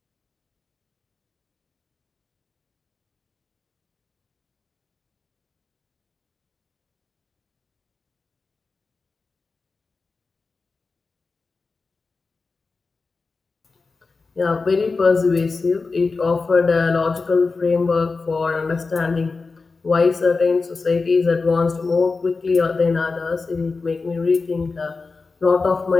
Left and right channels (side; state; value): right; quieter; 4.1 dB